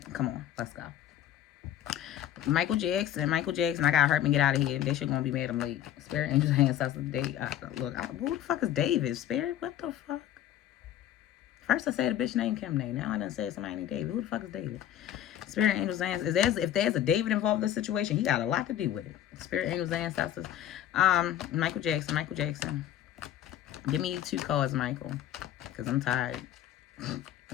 come on, let's go. Michael Jackson. I gotta hurt me get out of here. They shit gonna be mad I'm late. Spirit Angels Hands us the date. Who the fuck is David? Spirit? What the fuck? First I said a bitch named Kim name. Now I done said somebody named David. Who the fuck is David? Spirit Angels Ancestors. If there's a David involved in this situation, he got a lot to do with it. Spirit Angels Ancestors. Michael Jackson. Give me 2 cards, Michael. Because I'm tired.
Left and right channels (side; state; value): right; quieter; 11.5 dB